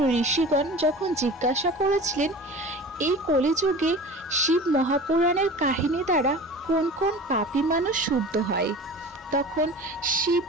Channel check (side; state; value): both; normal; correlation 0.37